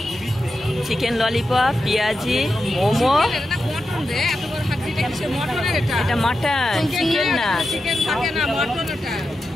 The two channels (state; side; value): normal; both; correlation 0.89